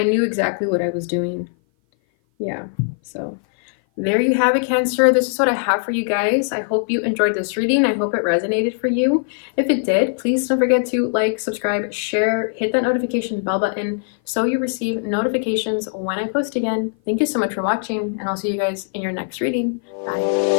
knew exactly what I was doing. Yeah, so there you have it, Cancer. This is what I have for you guys. I hope you enjoyed this reading. I hope it resonated for you. If it did, please don't forget to like, subscribe, share, hit that notification bell button so you receive notifications when I post again. Thank you so much for watching, and I'll see you guys in your next reading.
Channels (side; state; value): right; silent; 57 dB below the other